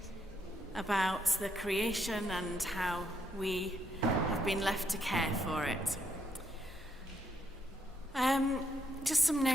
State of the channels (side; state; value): both; normal; correlation 0.76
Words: about the creation and how we have been left to care for it. Just some